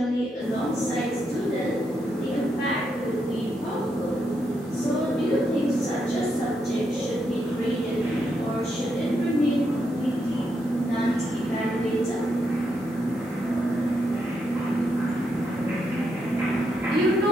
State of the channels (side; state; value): both; normal; correlation 0.81